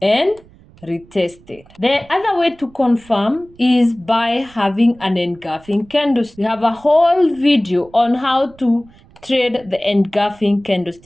and retested. The other way to confirm is by having an engulfing candlestick. We have a whole video on how to trade the engulfing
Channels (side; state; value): right; noise; rumble, 26 dB below the sound